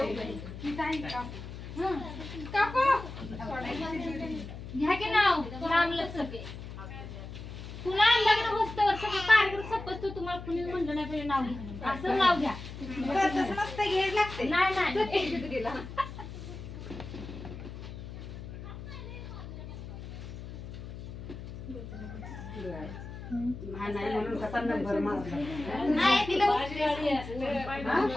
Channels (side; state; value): left; noise; hum, 11 dB below the sound